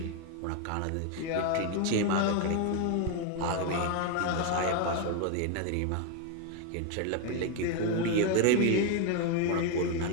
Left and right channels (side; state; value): both; different; correlation 0.01